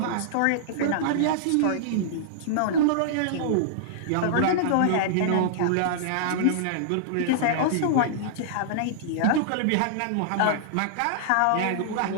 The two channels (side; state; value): both; different; correlation -0.02